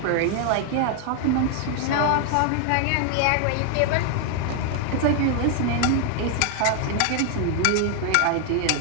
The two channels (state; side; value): different; both; correlation 0.00